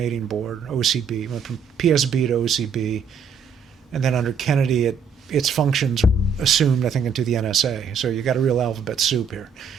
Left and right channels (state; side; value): quieter; left; 5.8 dB